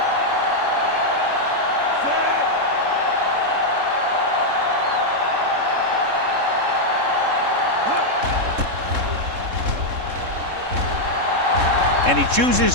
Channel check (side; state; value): left; late; 3.7 ms